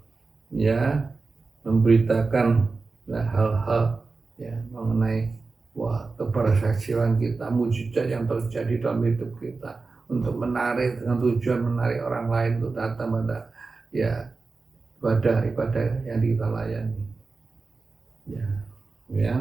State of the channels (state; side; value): quieter; left; 4.0 dB